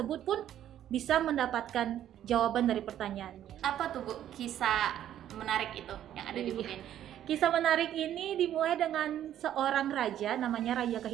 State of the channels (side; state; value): left; quieter; 11.2 dB